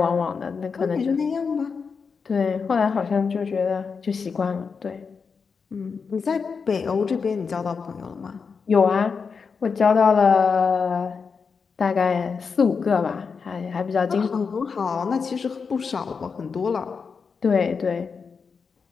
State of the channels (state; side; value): quieter; right; 5.5 dB